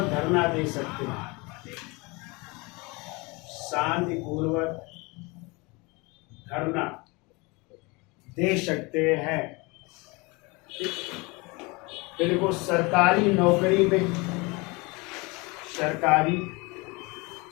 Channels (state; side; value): quieter; right; 26.4 dB